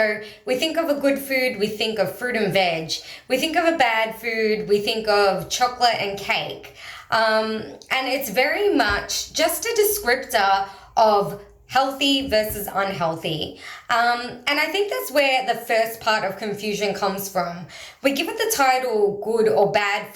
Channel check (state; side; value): identical; both; correlation 1.00